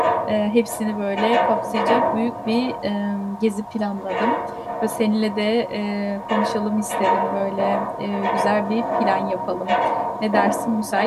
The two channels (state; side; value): identical; both; correlation 1.00